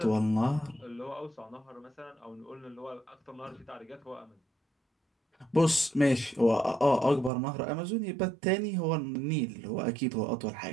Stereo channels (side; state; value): left; drops out; at 7.3 s